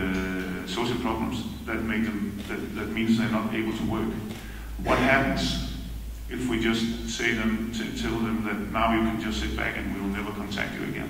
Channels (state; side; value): identical; both; correlation 1.00